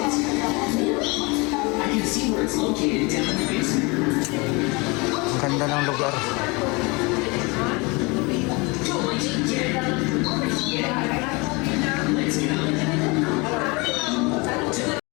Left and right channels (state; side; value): quieter; right; 27.0 dB